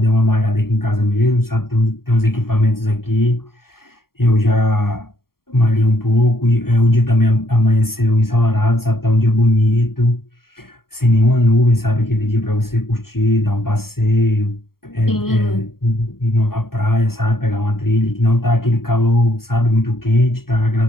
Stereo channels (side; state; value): right; late; 0.93 ms